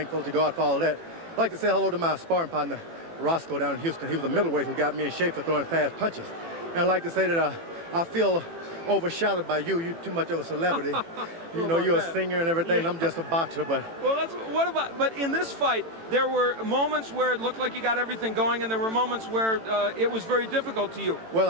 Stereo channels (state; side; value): late; left; 18 ms